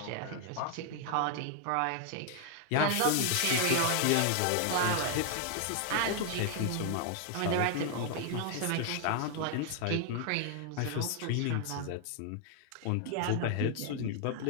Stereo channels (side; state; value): both; different; correlation 0.00